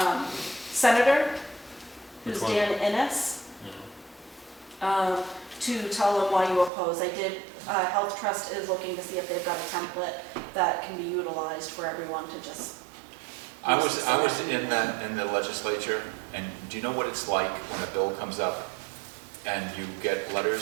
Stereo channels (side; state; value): left; drops out; at 6.7 s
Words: senator, who's Which one? Dan Innes, to tell them why you oppose. Health Trust is looking to see if they've got a template that can be utilized for everyone to just. I was in the legislature, and do you know what it's like when a bill comes up and you get